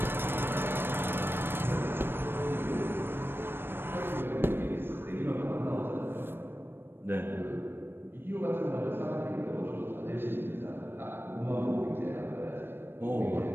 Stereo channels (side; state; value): left; late; 0.10 ms